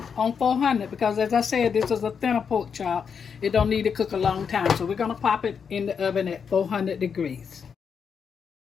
on 400, because as I said, this is a thinner pork chop. It don't need to cook a long time, so we're going to pop it in the oven at 400 degrees.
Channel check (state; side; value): quieter; right; 6.6 dB